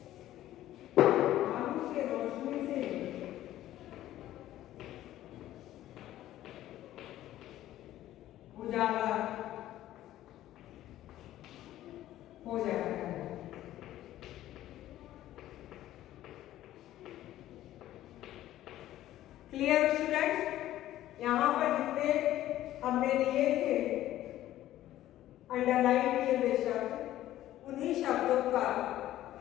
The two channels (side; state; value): right; quieter; 13.8 dB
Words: के रोशनी से उजाला हो जाता है। Clear students? यहाँ पर जितने हमने लिए थे अंडरलाइन किए हुए शब्द, उन्हीं शब्दों का